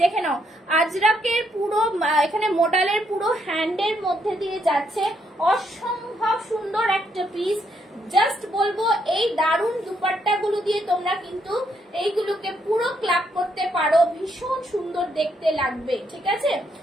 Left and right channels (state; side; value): normal; both; correlation 0.75